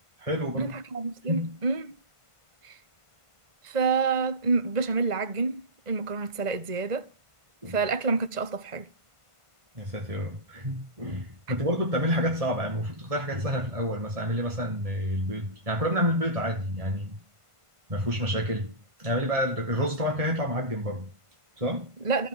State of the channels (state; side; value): late; left; 1.5 ms